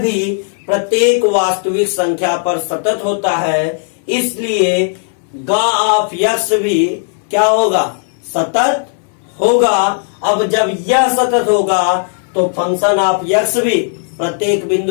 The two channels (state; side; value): silent; right; 66 dB below the other